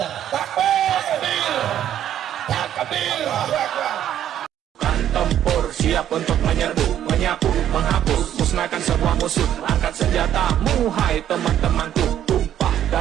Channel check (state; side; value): quieter; left; 10.8 dB